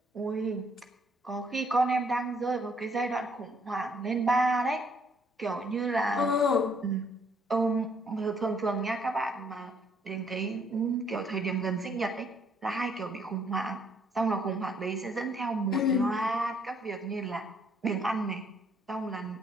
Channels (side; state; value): both; normal; correlation 0.66